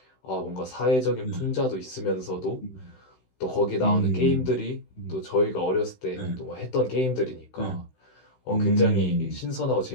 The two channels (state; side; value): late; right; 16 ms